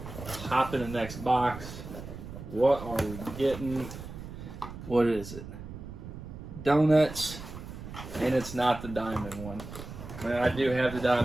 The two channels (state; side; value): noise; right; rumble, 11 dB below the sound